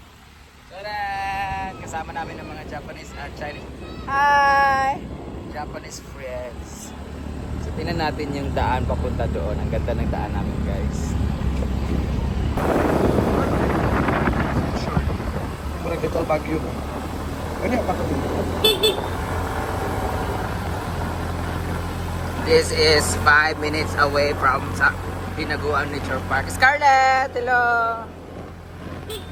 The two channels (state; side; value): identical; both; correlation 1.00